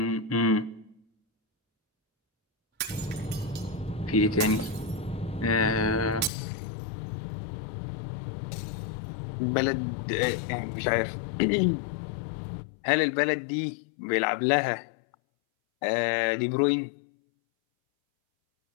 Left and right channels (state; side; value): drops out; right; at 6.3 s